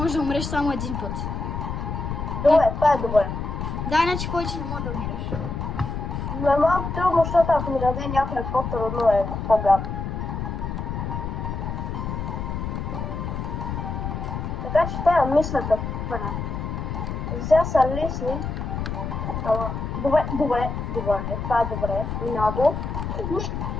да умреш само един път. Добре, това е добре. Да, иначе повече не може да умираш. Но е малко трудно, защото ако ми даде някой по-трудно е по-гадно. Така че трябва да мисля какво правя. Сега са лесни. Добре, това е добре. Много.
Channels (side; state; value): left; noise; rumble, 4 dB below the sound